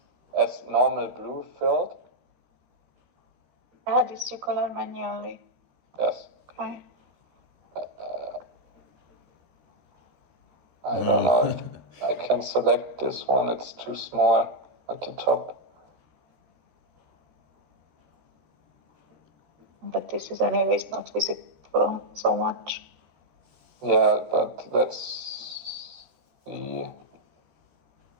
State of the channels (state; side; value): late; left; 13 ms